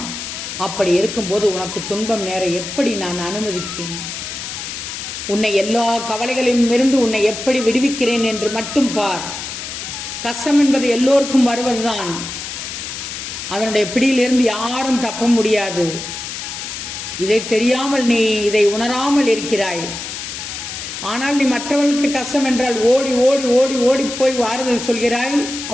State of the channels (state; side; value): noise; left; hiss, 7 dB below the sound